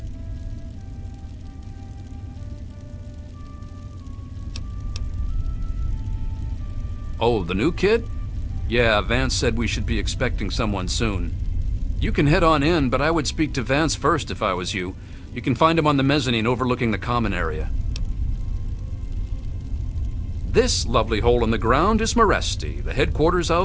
Oh, the new kid? Yeah, Vance said we should be expecting someone soon. You can head on in, but I would speak to Vance first if I was you. You can find him on the mezzanine overlooking the common area. This lovely hole in the ground is Meresti, the headquarters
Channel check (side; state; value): both; identical; correlation 1.00